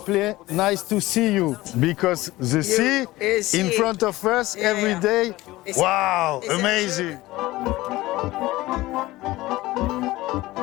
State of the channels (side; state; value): right; quieter; 18.3 dB